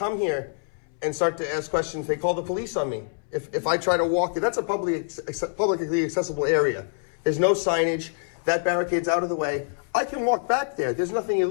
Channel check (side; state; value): right; silent; 61 dB below the other